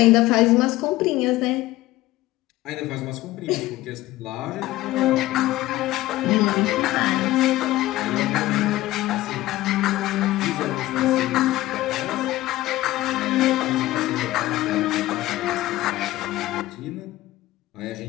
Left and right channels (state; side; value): quieter; right; 16.7 dB